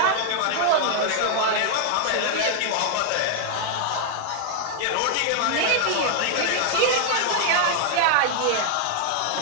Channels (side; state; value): both; different; correlation 0.00